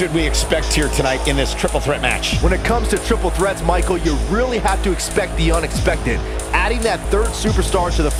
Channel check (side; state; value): both; identical; correlation 1.00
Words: we expect here tonight in this triple threat match? When it comes to triple threats, Michael, you really have to expect the unexpected. Adding that third superstar to the